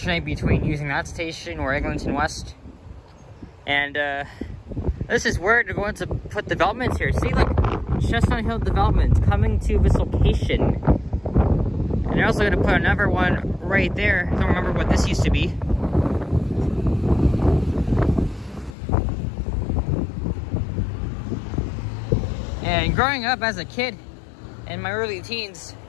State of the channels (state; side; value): drops out; right; at 18.8 s